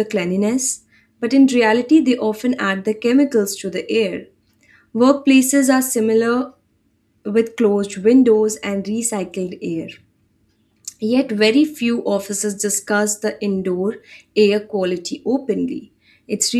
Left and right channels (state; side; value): identical; both; correlation 1.00